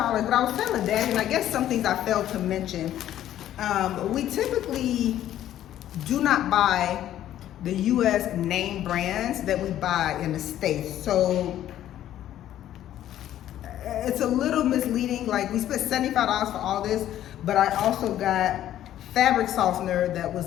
But I was telling Dad, and I guess some things I failed to mention. We typically do not buy the U.S. name brands that we buy in the States. So it's a little misleading. Like, we spent $75 for all this, but I also got fabric softener that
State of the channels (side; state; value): right; quieter; 12.1 dB